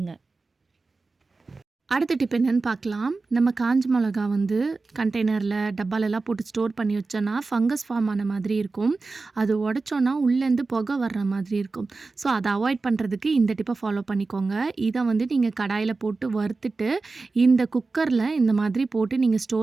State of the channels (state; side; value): quieter; left; 3.8 dB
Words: அடுத்த டிப் என்னென்னு பார்க்கலாம். நம்ம காஞ்ச மிளகா வந்து கண்டெய்னரில் டப்பாலெல்லாம் போட்டு ஸ்டோர் பண்ணி வச்சோன்னா ஃபங்கஸ் ஃபார்ம் ஆன மாதிரி இருக்கும். அது உடச்சோன்னா உள்ளேருந்து புகை வர்ற மாதிரி இருக்கும். ஸோ அதை அவாய்ட் பண்ணுறதுக்கு இந்த டிப்பை ஃபாலோ பண்ணிக்கோங்க. இதை வந்து நீங்கள் கடாயில் போட்டு வறுத்துட்டு இந்த குக்கரில் இந்த மாதிரி போட்டு நீங்கள்